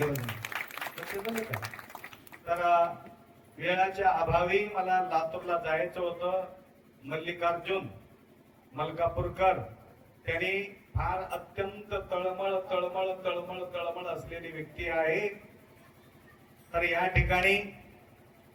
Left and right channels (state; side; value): identical; both; correlation 1.00